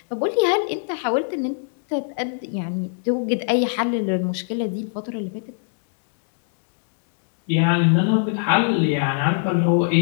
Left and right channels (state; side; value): silent; right; digital silence